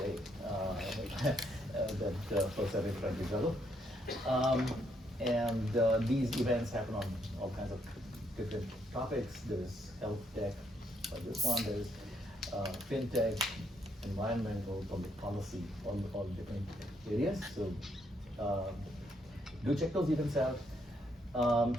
that folks are in front of each other. These events happen on all kinds of different topics. There's health tech, like this one. There's fintech, environmental, public policy, all different areas. So do check those events out.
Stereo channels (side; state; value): both; normal; correlation 0.73